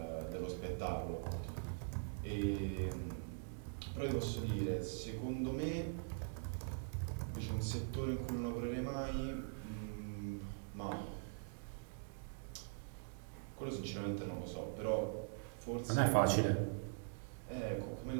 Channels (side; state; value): left; silent; digital silence